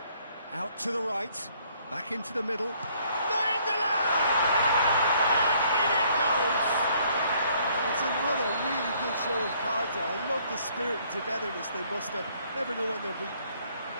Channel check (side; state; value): both; inverted; correlation -0.64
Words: out to the right, back into the middle. Nainggolan! And in it goes! And it's another really good show of character. I love the spirit and togetherness they muster. Never know when they're beaten.